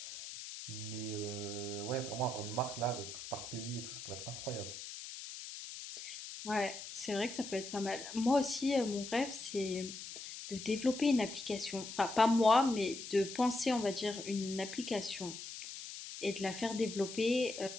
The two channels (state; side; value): noise; left; hiss, 10 dB below the sound